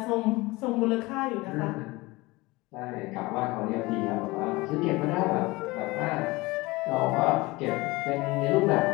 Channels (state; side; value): quieter; right; 22.2 dB